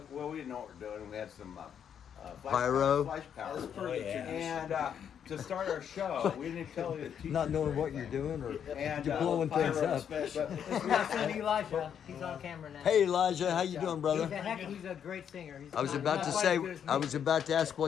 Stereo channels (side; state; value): right; quieter; 8.4 dB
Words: Well, we didn't know what we were doing. We had some Pyro? flash powder. As per the yeah. tradition. And to start our show, we didn't tell the teachers. Not knowing or what you're anything. doing or And you're blowing Pyro things up. special. Now send Elijah. He's on camera now. Hey Elijah, how you doing, brother? He's a great singer. He's I was not- about not to quite say, as good as me. I was about to ask